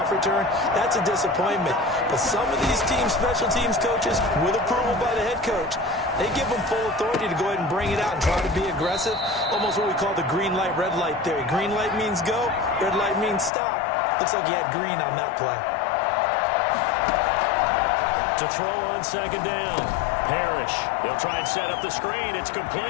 return, that's a disappointment. But some of these teams, special teams coaches, with approval by the head coach, they give them full authority to go ahead and bring it out and try to be aggressive. Almost what we call the green light, red light theory. Green light means go, red light means stop. Looks like he had green on that play. To throw on second down. Parrish. They'll try and set up the screen. It's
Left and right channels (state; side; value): drops out; right; at 13.5 s